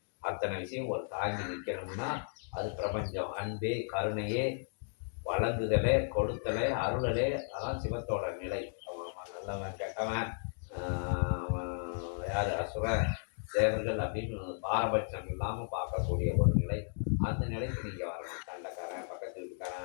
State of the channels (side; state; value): right; silent; digital silence